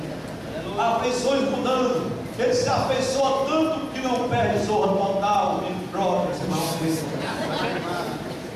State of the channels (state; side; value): identical; both; correlation 1.00